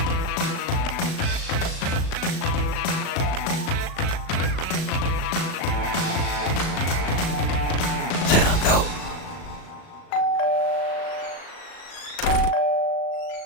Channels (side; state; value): right; late; 37 ms